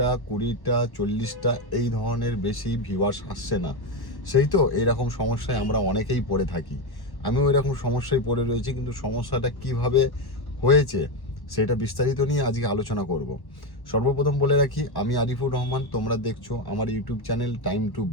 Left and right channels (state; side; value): late; right; 1.1 ms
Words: 20টা 40টা এই ধরনের বেশি ভিউয়ার্স আসছে না। সেই তো এইরকম সমস্যায় আমরা অনেকেই পড়ে থাকি। আমিও এরকম সমস্যায় পড়ে রয়েছি, কিন্তু সমস্যাটা কিভাবে হয়েছে সেটা বিস্তারিত নিয়ে আজকে আলোচনা করব। সর্বপ্রথম বলে রাখি, আমি আরিফুর রহমান, তোমরা দেখছো আমার YouTube channel time to